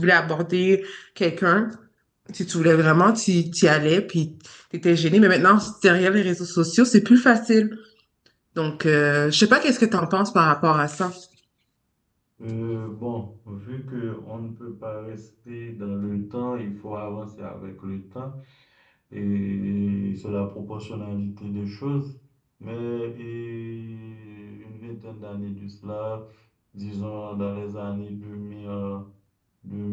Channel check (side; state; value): both; identical; correlation 1.00